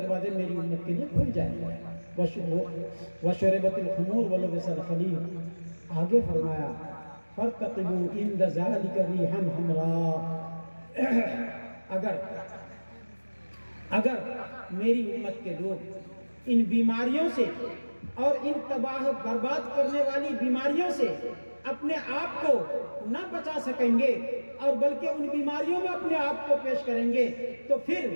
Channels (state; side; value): inverted; both; correlation -1.00